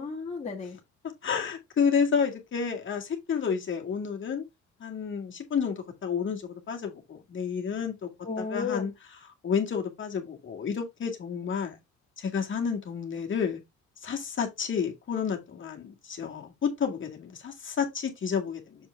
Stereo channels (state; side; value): quieter; right; 6.2 dB